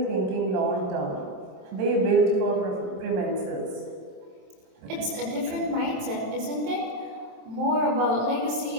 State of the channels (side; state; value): left; late; 27 ms